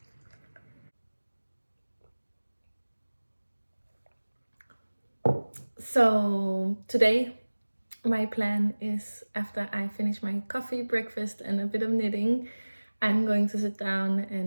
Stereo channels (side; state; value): both; inverted; correlation -1.00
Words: So today my plan is, after I finish my coffee, breakfast and a bit of knitting, I'm going to sit down